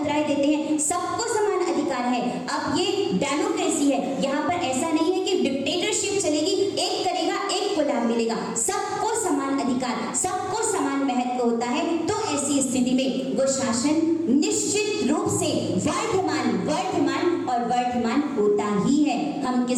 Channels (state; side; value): identical; both; correlation 1.00